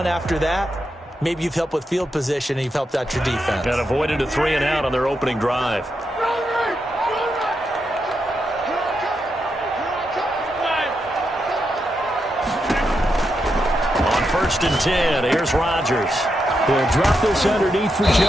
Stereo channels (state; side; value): normal; both; correlation 0.84